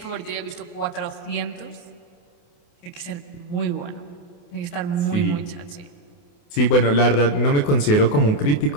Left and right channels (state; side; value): late; right; 28 ms